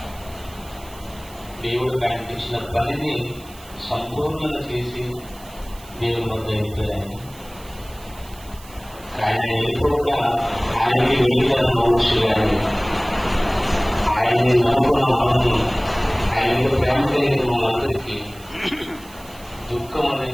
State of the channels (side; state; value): right; noise; hiss, 21 dB below the sound